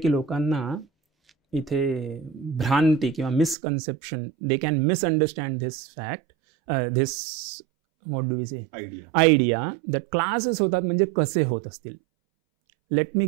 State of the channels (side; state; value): left; drops out; at 3.6 s